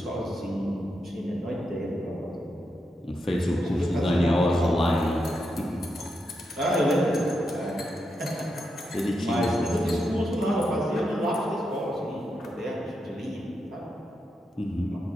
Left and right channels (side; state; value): both; normal; correlation 0.84